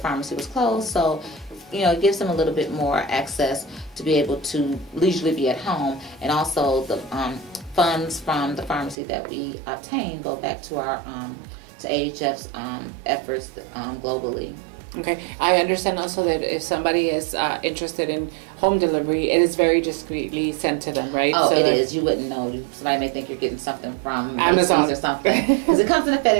was closed. So, it gives them a little bit more access to be able to leisurely be at home. And also the funds from the pharmacy that we obtain go back to our to AHF's efforts globally. Okay, I understand also that if somebody is interested in home delivery, it is very discreetly sent to them, right? Oh, so it is. You wouldn't know. Somebody may think you're getting something from Amazon or something, because it comes in a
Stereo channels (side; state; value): left; drops out; at 9.0 s